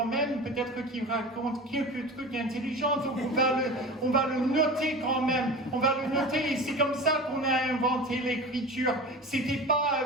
même, peut-être qu'il raconte quelques trucs intelligents, donc on va le noter quand même, on va le noter, et c'est comme ça qu'on a inventé l'écriture. C'était pas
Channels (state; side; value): normal; both; correlation 0.33